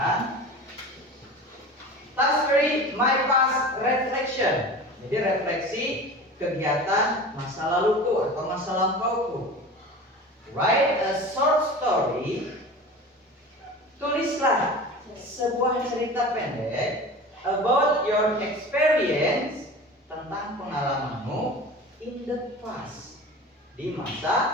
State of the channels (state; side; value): normal; both; correlation 0.35